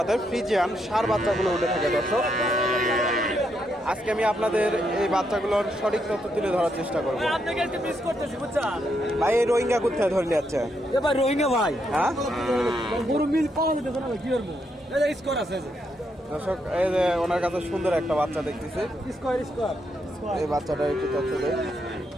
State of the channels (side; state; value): both; normal; correlation 0.79